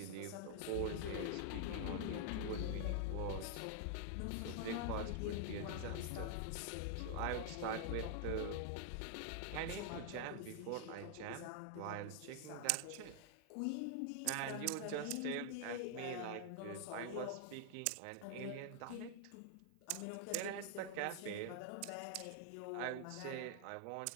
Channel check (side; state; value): both; different; correlation -0.01